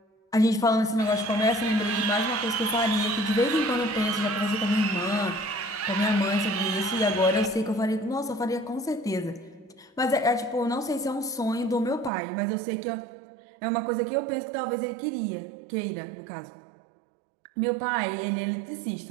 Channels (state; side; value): drops out; left; at 12.1 s